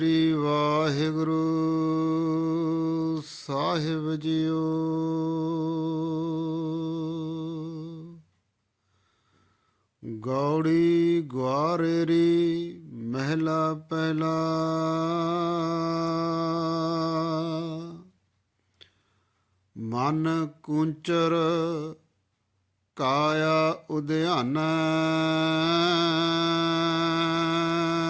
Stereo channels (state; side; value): identical; both; correlation 1.00